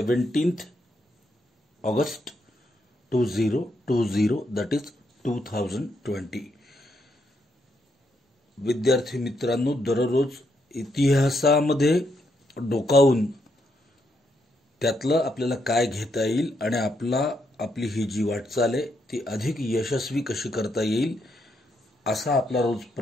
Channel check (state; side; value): normal; both; correlation 0.78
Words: August 2020 that is 2020। विद्यार्थी मित्रांनो दररोज इतिहासामध्ये डोकावून त्यातलं आपल्याला काय घेता येईल आणि आपली ही जी वाटचाल आहे ती अधिक यशस्वी कशी करता येईल असा आपला रोज